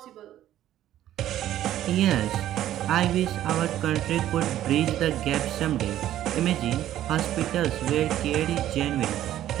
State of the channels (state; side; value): quieter; left; 12.6 dB